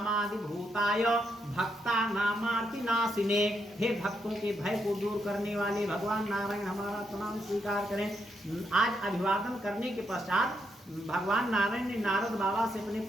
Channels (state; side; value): normal; both; correlation 0.79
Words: भूताय भक्ता नामार्ति नाशिने। हे भक्तों के भय को दूर करने वाले भगवान नारायण हमारा प्रणाम स्वीकार करें। आज अभिवादन करने के पश्चात भगवान नारायण ने नारद बाबा से अपने